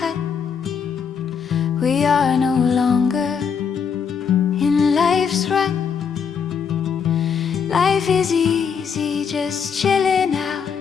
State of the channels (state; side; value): quieter; right; 6.6 dB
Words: We are no longer in life's run. Life is easy, just chilling out.